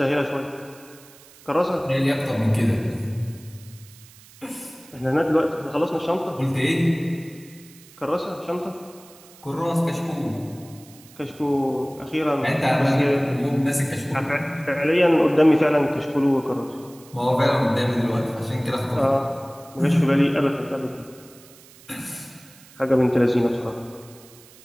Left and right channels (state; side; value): noise; right; hiss, 23 dB below the sound